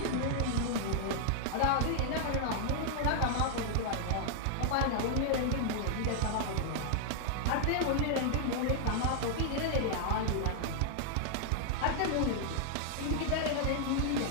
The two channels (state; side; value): different; both; correlation -0.01